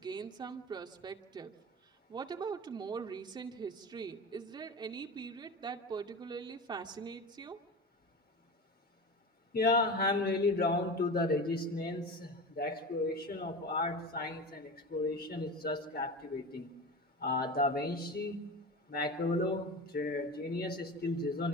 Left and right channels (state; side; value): normal; both; correlation 0.28